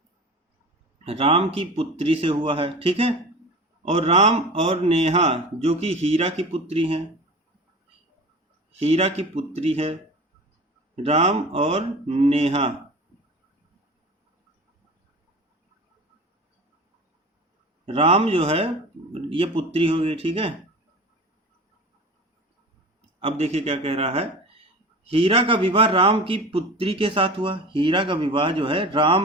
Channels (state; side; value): normal; both; correlation 0.35